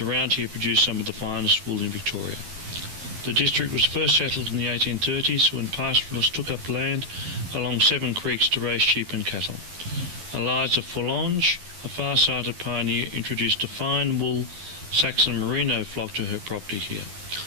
here produce some of the finest wool in Victoria. The district was first settled in the 1830s when pastoralists took up land along 7 creeks to raise sheep and cattle. Eliza Forlange, a far-sighted pioneer, introduced a fine wool Saxon merino flock to her property here.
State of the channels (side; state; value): left; late; 11 ms